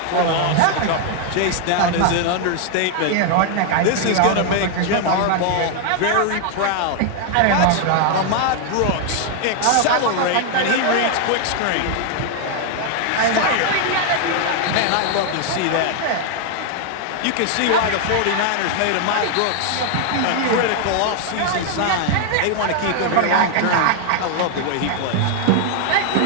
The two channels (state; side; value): different; both; correlation 0.00